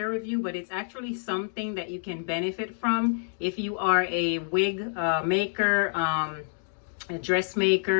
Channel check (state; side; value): silent; right; digital silence